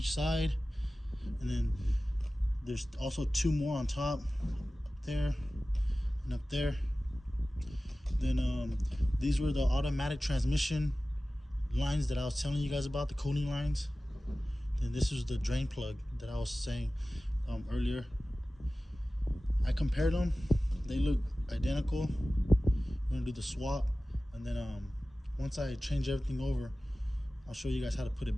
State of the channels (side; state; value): both; normal; correlation 0.96